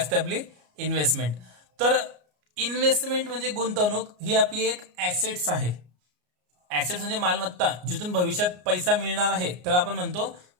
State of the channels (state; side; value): late; left; 33 ms